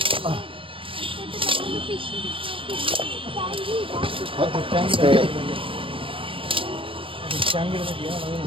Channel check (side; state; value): left; late; 0.25 ms